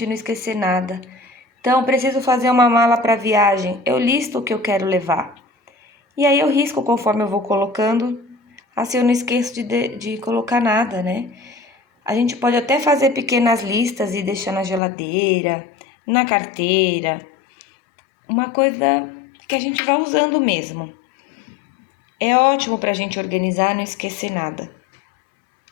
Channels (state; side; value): drops out; right; at 14.8 s